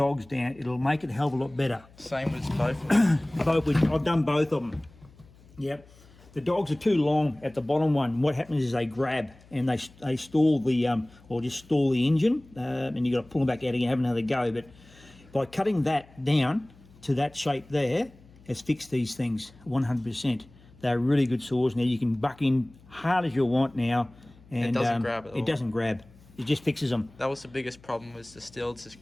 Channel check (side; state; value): left; noise; hum, 25 dB below the sound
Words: down, it'll make it a hell of a lot better. Same with both of them. I've done both of them. Yep. The dogs are too long at the bottom one. What happens is they grab and they stall the, or just stall the engine, and you've got to pull them back out again, have another go. But by cutting that down to that shape there, has fixed these things 100%. They're really good saws now. You can buck in hard as you want now. And it doesn't grab at all. It doesn't grab. It just fixes them. That was the biggest problem, was the Stihls just